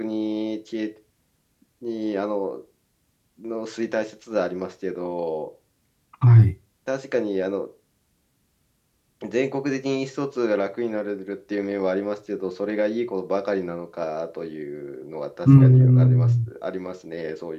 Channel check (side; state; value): both; identical; correlation 1.00